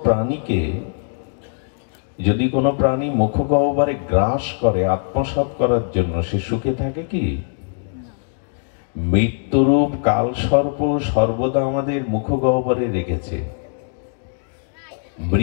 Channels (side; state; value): right; silent; digital silence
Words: প্রাণীকে যদি কোনো প্রাণী মুখগহ্বরে গ্রাস করে আত্মসাৎ করার জন্য, সে সুখে থাকে কি? মৃত্যুরূপ কালসর্প সর্বদা আমাদের মুখগহ্বরে রেখেছে।